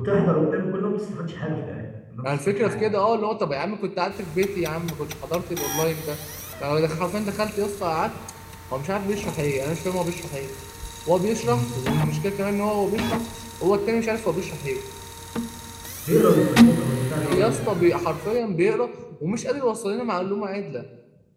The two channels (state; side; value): identical; both; correlation 1.00